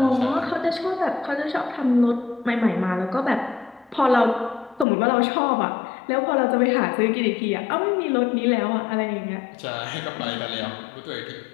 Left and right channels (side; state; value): right; drops out; at 4.9 s